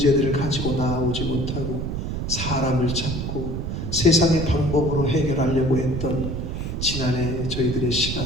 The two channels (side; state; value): right; noise; rumble, 4 dB below the sound